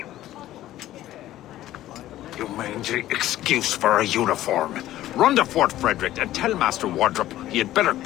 You mangy excuse for a uniform. Run to Fort Frederick and tell Master Wardrop he had better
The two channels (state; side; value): quieter; right; 14.1 dB